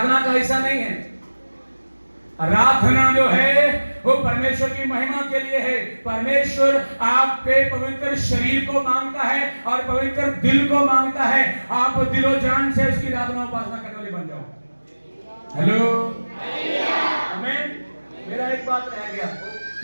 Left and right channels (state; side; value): inverted; both; correlation -1.00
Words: का हिस्सा नहीं है। आराधना जो है वो परमेश्वर की महिमा के लिए है। परमेश्वर आपके पवित्र शरीर को मांगता है और पवित्र दिल को मांगता है। आप दिलो जान से उसकी आराधना उपासना करने वाले बन जाओ। हेलो, आमीन। मेरा एक बात रह गया,